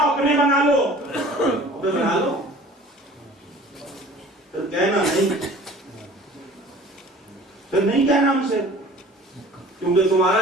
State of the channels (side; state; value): both; normal; correlation 0.46